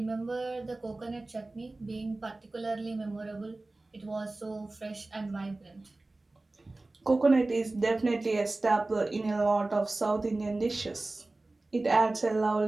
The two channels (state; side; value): quieter; left; 3.0 dB